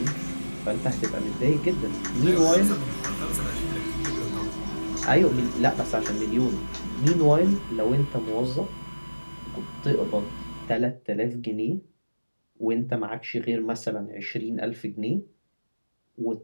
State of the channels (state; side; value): inverted; both; correlation -1.00